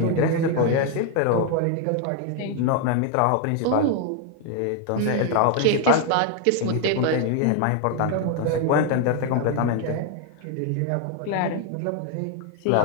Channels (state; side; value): different; both; correlation 0.01